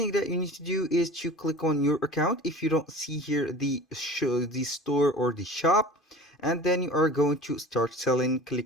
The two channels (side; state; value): both; normal; correlation 0.39